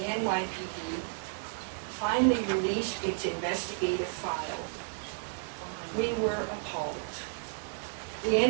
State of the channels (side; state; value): left; silent; digital silence